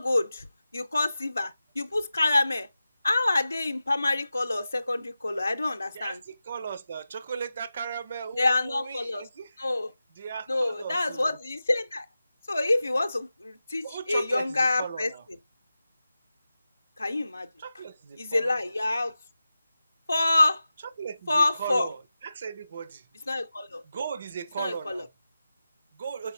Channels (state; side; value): inverted; both; correlation -0.94